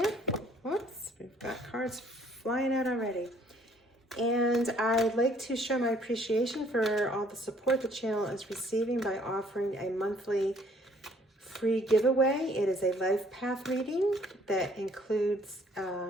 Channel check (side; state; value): both; normal; correlation 0.61